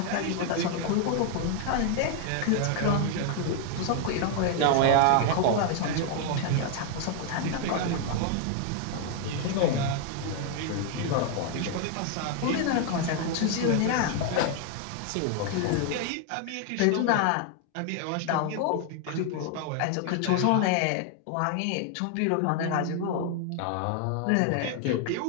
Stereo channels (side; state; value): both; different; correlation 0.00